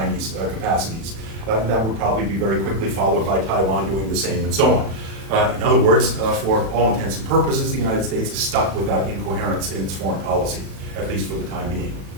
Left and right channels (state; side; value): late; left; 36 ms